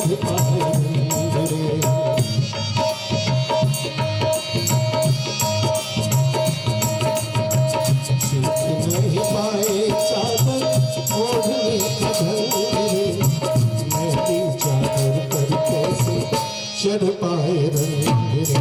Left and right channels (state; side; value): identical; both; correlation 1.00